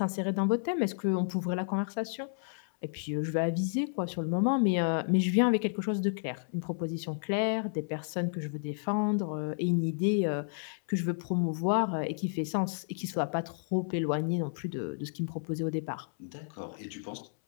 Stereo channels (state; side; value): silent; right; 57 dB below the other